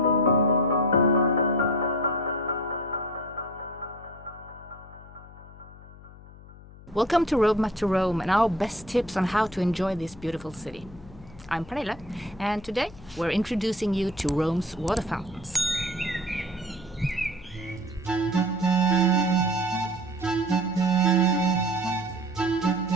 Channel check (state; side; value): noise; left; hum, 19 dB below the sound